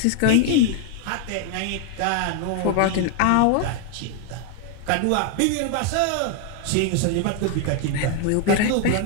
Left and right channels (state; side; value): different; both; correlation 0.00